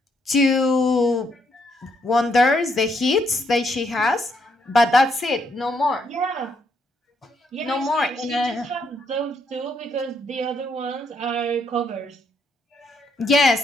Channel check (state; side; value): normal; both; correlation 0.74